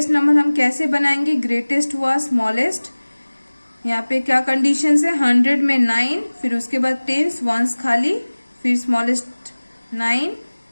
नंबर हम कैसे बनाएंगे, ग्रेटेस्ट हुआ स्मॉलेस्ट, यहाँ पे क्या कंडीशन है, 100 में 9, फिर उसके बाद टेंस, वंस खाली, फिर स्मॉलेस्ट 9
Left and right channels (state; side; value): inverted; both; correlation -1.00